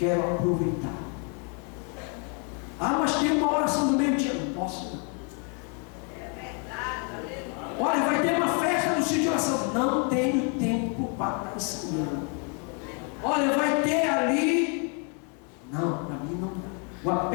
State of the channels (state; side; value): quieter; right; 37.6 dB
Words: aproveitar. Ah, mas tem uma oração do meio-dia. Não posso, não. Olha, vai ter uma festa no sítio de oração. Não tenho tempo para estar ensinando. Olha, vai ter ali. Não, para mim não dá. O